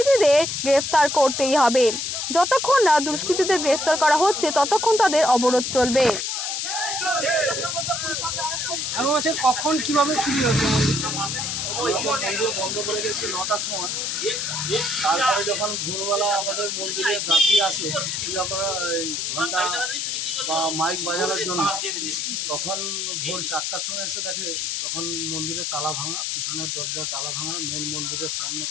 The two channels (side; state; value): left; noise; hiss, 2 dB below the sound